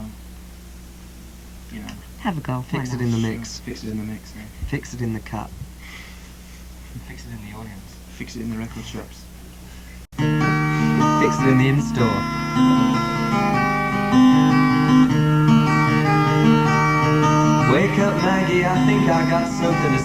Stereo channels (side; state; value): both; identical; correlation 1.00